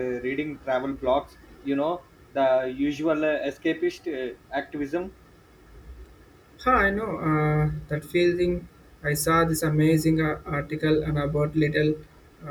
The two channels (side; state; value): both; identical; correlation 1.00